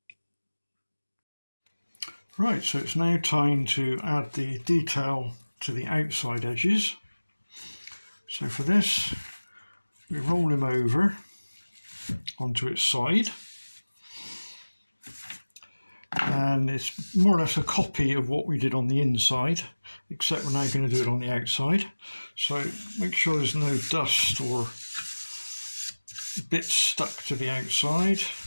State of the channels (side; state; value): both; inverted; correlation -1.00